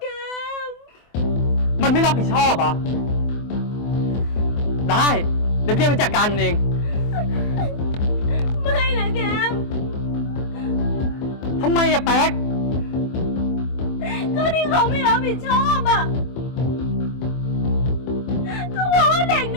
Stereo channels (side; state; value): right; late; 24 ms